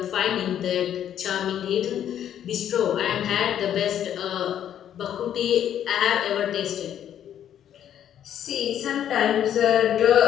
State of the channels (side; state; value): right; quieter; 10.2 dB